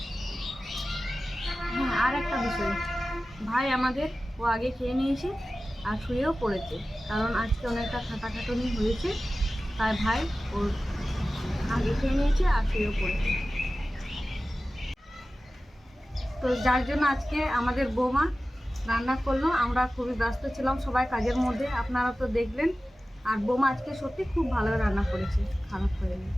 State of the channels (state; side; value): normal; both; correlation 0.95